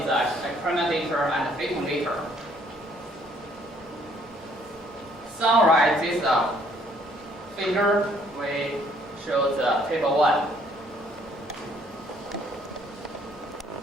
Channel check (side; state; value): both; normal; correlation 0.63